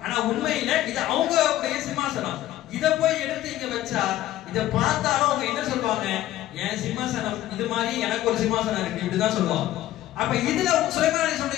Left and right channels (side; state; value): right; quieter; 14.1 dB